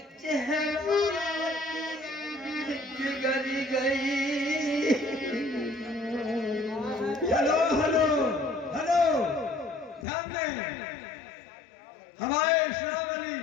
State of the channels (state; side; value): drops out; right; at 10.1 s